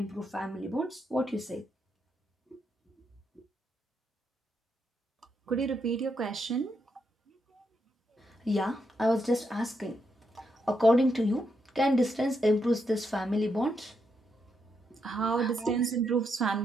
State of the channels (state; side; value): normal; both; correlation 0.81